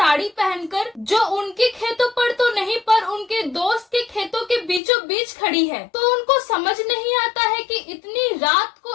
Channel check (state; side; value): drops out; right; at 4.8 s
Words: पहनकर, जो उनके खेतों पर तो नहीं पर उनके दोस्त के खेतों के बीचों बीच खड़ी है। तो उनको समझ नहीं आता है कि इतनी रात